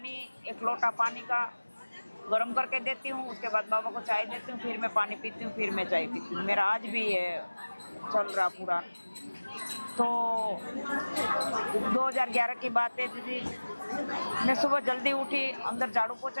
एक लोटा पानी का गर्म करके देती हूँ, उसके बाद बाबा को चाय देती हूँ, फिर मैं पानी पीती हूँ, फिर मैं चाय पीती हूँ। मेरा आज भी ये चल रहा पूरा। तो 2011 की बात है दीदी, मैं सुबह जल्दी उठी, अंदर झाड़ू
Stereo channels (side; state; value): both; inverted; correlation -1.00